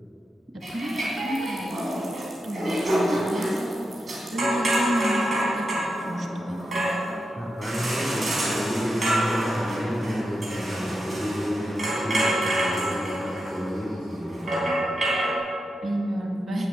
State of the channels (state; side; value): normal; both; correlation 0.87